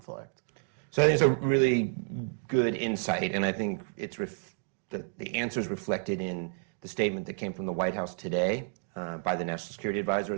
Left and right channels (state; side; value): silent; left; digital silence